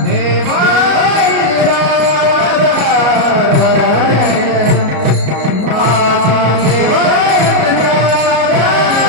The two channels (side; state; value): left; late; 33 ms